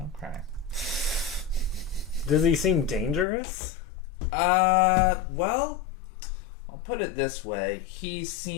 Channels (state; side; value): drops out; right; at 3.2 s